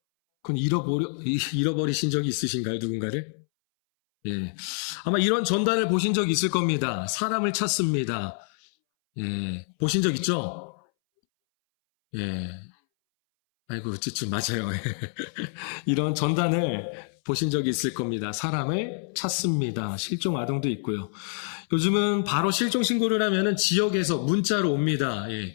그건 잃어버리신 적이 있으신가요? 누군가를? 예. 아마 이런 전단을 보신 적 있을 겁니다. 사람을 찾습니다. 예. 보신 적 있죠? 예. 아이고, 좀 맞아요. 이런 전단을 보신 적이 있을 겁니다. 사람을 찾습니다. 실종 아동도 있고요. 요즘은 바로 실종 신고를 하면은 지역에서 문자로 옵니다.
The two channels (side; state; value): right; silent; 60 dB below the other